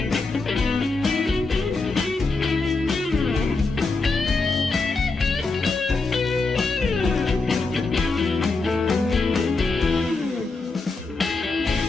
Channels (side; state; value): right; quieter; 3.8 dB